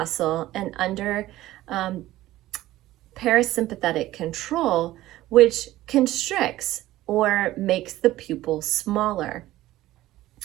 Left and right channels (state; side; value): quieter; left; 15.8 dB